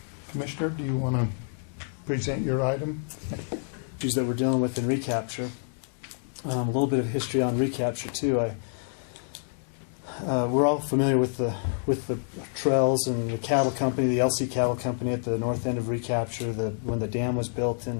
Commissioner, do you want to present your item? Issues that we're dealing with in Recapture. A little bit of history on Recapture too. We're all familiar with the trails and the cattle company, the LC Cattle Company at the north end of Recapture. When the dam was built,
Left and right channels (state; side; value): silent; right; 59 dB below the other